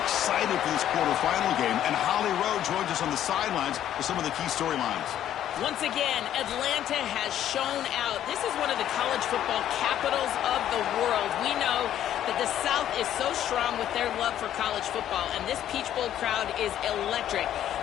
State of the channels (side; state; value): right; quieter; 11.2 dB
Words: for this quarterfinal game, and Holly Rowe joins us on the sidelines with some of the key storylines. Once again, Atlanta has shown out. This is one of the college football capitals of the world. We know that the South is so strong with their love for college football, and this Peach Bowl crowd is electric.